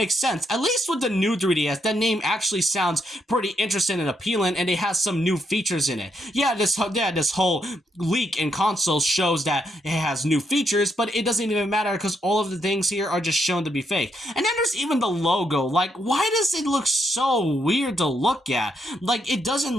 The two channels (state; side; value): normal; both; correlation 0.77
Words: sense. At least with the new 3DS, that name actually sounds pretty interesting and appealing, and it has some new features in it. Yeah, this whole leak in consoles shows that it has new features, but it doesn't even matter because all of the things here are just shown to be fake. And then there's even the logo. Like, why does it look so weird to look at? Like, it doesn't